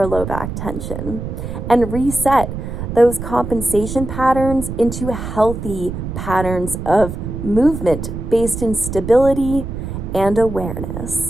low back tension and reset those compensation patterns into healthy patterns of movement based in stability and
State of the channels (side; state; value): right; noise; rumble, 6 dB below the sound